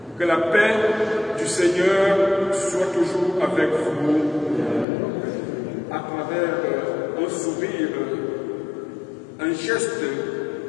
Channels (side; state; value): right; drops out; at 4.9 s